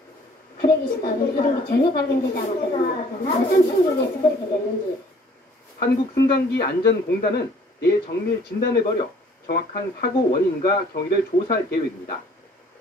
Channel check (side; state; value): both; normal; correlation 0.57